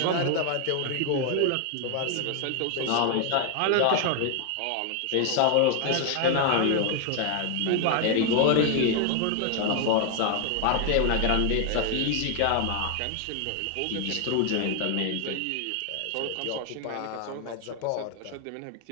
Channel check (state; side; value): different; both; correlation 0.00